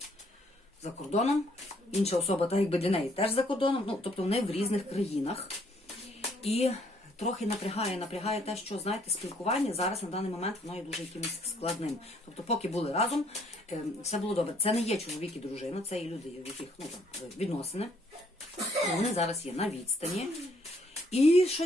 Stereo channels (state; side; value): normal; both; correlation 0.66